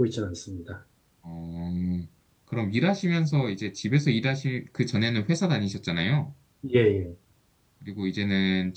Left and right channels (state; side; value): identical; both; correlation 1.00